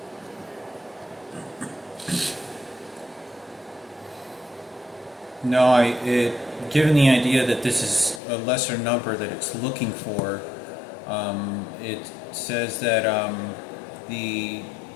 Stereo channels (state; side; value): drops out; right; at 8.2 s